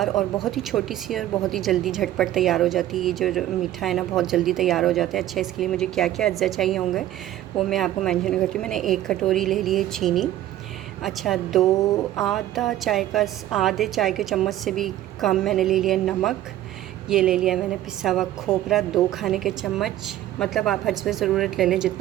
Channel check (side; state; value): left; quieter; 13.4 dB